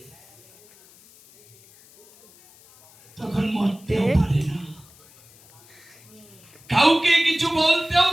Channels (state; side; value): noise; left; hiss, 26 dB below the sound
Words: তখন মরতেও পারে না, কাউকে কিছু বলতেও